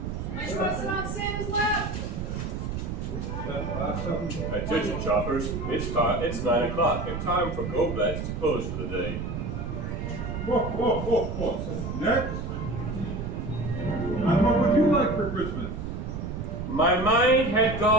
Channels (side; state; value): right; noise; rumble, 4 dB below the sound